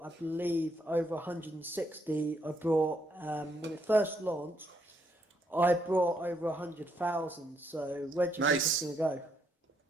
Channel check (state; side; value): normal; both; correlation 0.75